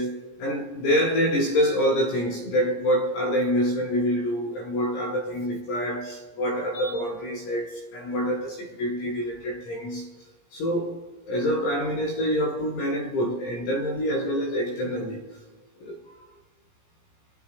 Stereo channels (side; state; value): right; late; 17 ms